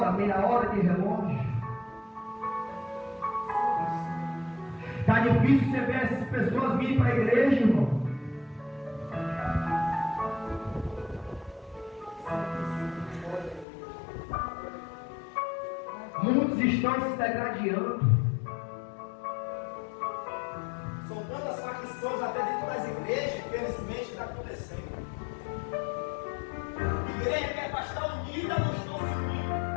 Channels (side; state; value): right; drops out; at 13.7 s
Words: meia hora de relógio. Está difícil você ver essas pessoas virem para a igreja, irmão. Muitos estão se degradando. São tantas facções até dentro das igrejas, infelizmente está acontecendo. Igreja que é para estar unida, não estão se unindo.